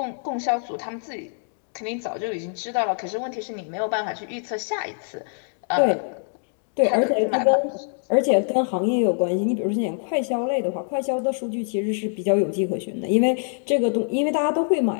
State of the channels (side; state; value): right; silent; 62 dB below the other